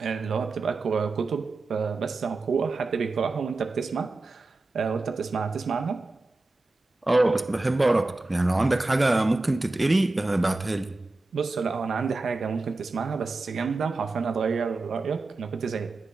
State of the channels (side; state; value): left; quieter; 3.2 dB